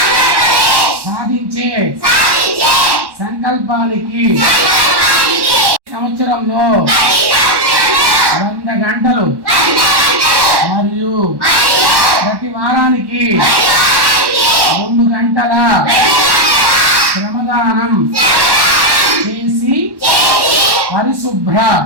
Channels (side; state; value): left; late; 1.1 ms